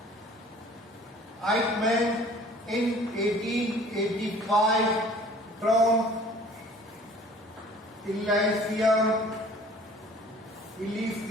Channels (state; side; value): normal; both; correlation 0.50